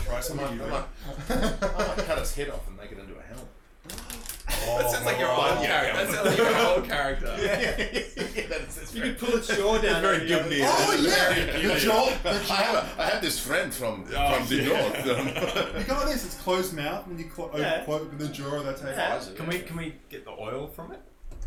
some I of you. might cut its head off and make it into a helmet. That sounds like your old character. That sounds like your old character. You could pull its jaw down. Very and Gibney. Oh, yeah! The jaw! I have this friend from the north. You got this, it's closed mouth when you Yeah. open the jaw, that's how Yeah. you Can we get the oil from it?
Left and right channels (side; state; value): both; identical; correlation 1.00